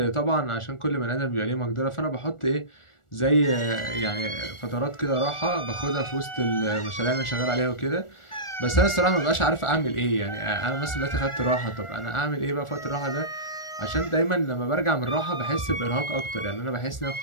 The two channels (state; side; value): late; right; 1.4 ms